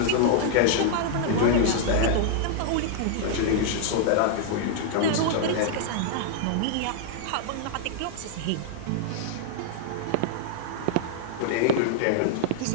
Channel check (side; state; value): both; different; correlation -0.01